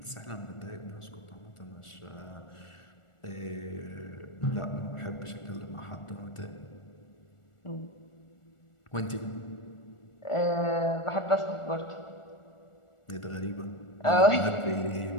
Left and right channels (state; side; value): late; right; 1.4 ms